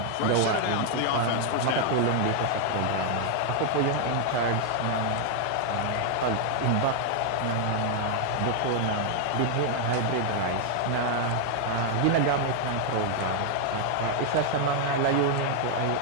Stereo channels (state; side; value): different; both; correlation 0.00